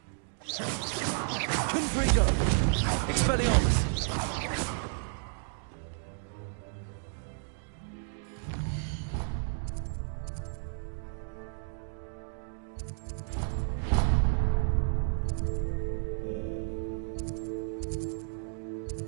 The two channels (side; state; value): left; silent; digital silence